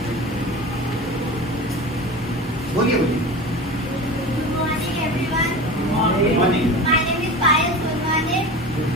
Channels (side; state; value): both; normal; correlation 0.32